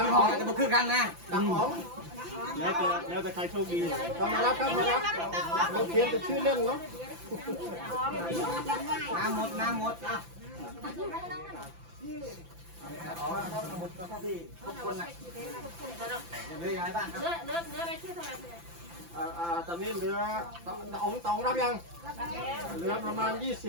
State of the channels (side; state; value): left; late; 5.9 ms